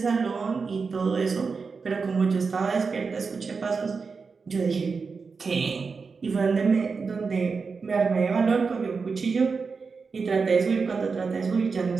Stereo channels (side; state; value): left; quieter; 4.9 dB